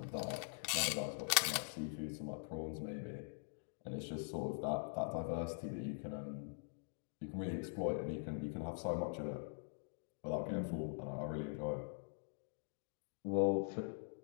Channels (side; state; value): right; silent; digital silence